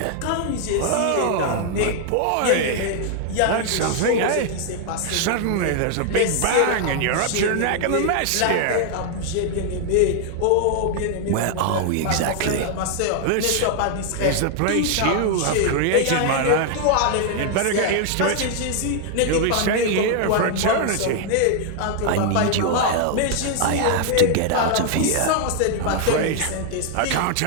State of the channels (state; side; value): different; both; correlation 0.00